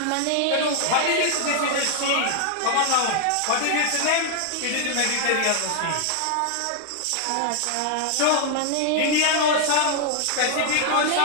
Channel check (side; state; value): both; different; correlation 0.00